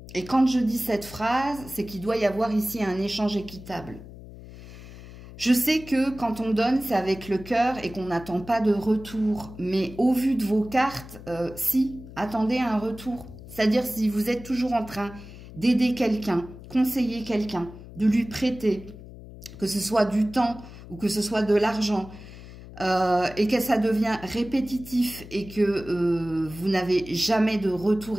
Et quand je dis cette phrase, c'est qu'il doit y avoir ici un échange équitable. Je sais que quand on donne, c'est avec le cœur et qu'on n'attend pas de retour. Mais au vu de vos cartes, si, attendez un retour. C'est-à-dire si vous êtes toujours en train d'aider quelqu'un, conseiller quelqu'un, de lui prêter, que ce soit du temps ou que ce soit de l'argent, et que ça devient répétitif et que vous n'avez jamais de retour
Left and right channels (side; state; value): left; noise; hum, 16 dB below the sound